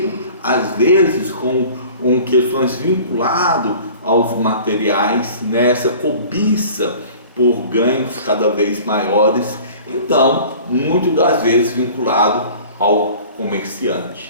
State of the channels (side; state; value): both; inverted; correlation -0.45